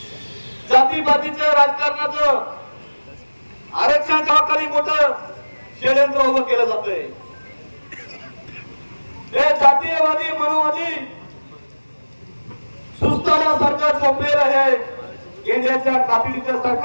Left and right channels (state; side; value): inverted; both; correlation -1.00